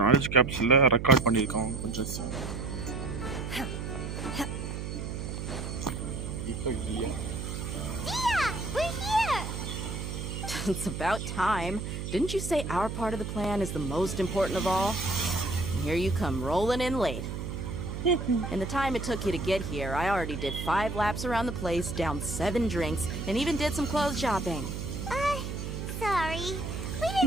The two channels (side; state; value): right; noise; hum, 5 dB below the sound